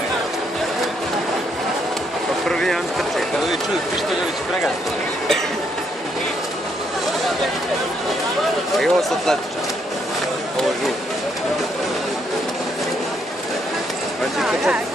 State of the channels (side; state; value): both; normal; correlation 0.74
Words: Pa prvi jedan trče. Kad ovi čuju Pištoljević pregaziti. I ovo su atletiča. Ovo je žut. Znači trčati